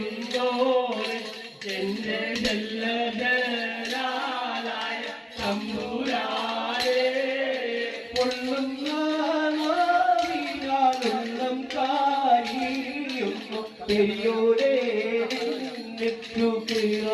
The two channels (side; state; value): both; identical; correlation 1.00